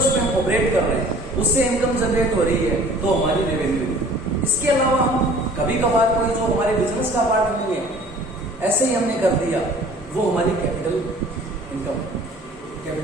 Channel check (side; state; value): both; normal; correlation 0.50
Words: हम ऑपरेट कर रहे हैं, उससे इनकम जनरेट हो रही है, तो हमारी रेवेन्यू। इसके अलावा हम कभी कभार कोई जो हमारे बिजनेस का पार्ट नहीं है, ऐसे ही हमने कर दिया, वो हमारी capital income,